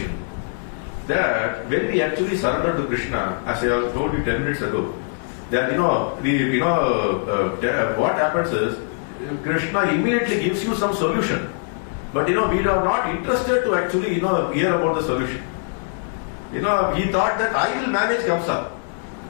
That when we actually surrender to Krishna, as I told you 10 minutes ago, that what happens is Krishna immediately gives you some solution, but we are not interested to actually hear about the solution. He thought that I will manage Kamsa.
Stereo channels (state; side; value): silent; right; digital silence